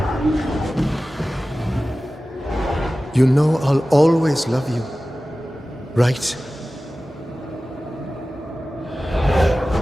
You know I'll always love you, right?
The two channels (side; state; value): both; normal; correlation 0.96